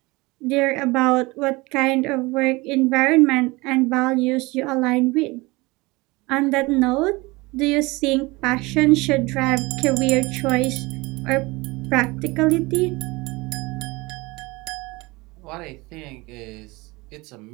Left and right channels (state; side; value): quieter; left; 23.5 dB